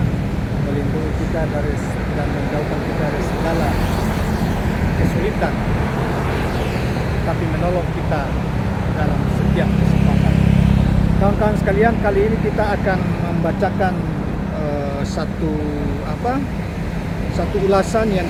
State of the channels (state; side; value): identical; both; correlation 1.00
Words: melindungi kita dan menjauhkan kita dari segala kesulitan, tapi menolong kita dalam setiap kesempatan. Kawan-kawan sekalian, kali ini kita akan membacakan satu ulasan yang